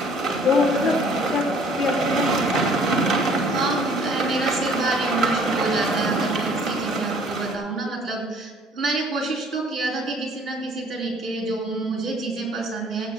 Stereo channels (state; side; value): normal; both; correlation 0.56